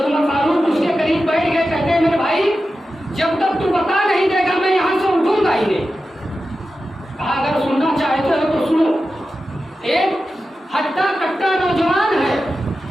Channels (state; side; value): normal; both; correlation 0.92